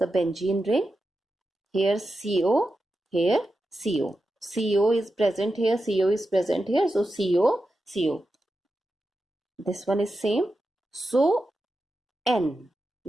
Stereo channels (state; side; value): normal; both; correlation 0.90